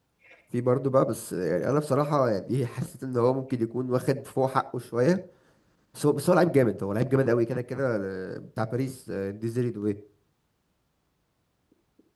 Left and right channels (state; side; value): identical; both; correlation 1.00